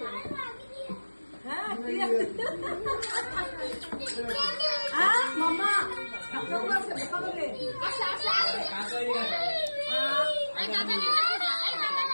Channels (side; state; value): both; inverted; correlation -1.00